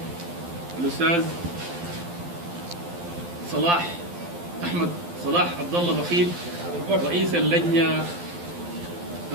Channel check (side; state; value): left; late; 12 ms